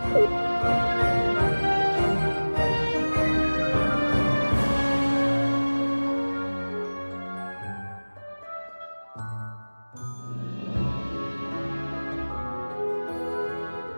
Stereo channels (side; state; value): both; inverted; correlation -1.00